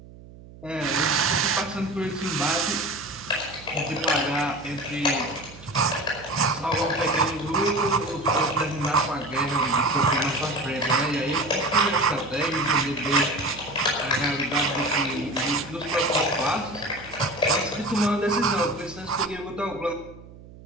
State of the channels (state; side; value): noise; right; hum, 19 dB below the sound